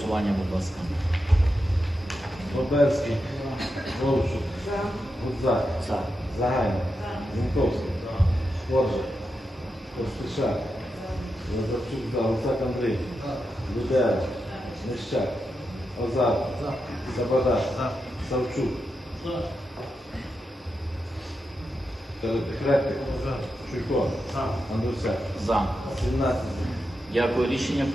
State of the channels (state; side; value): normal; both; correlation 0.87